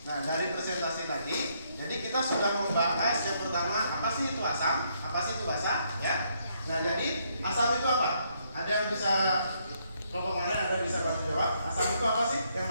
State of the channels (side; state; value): both; inverted; correlation -0.73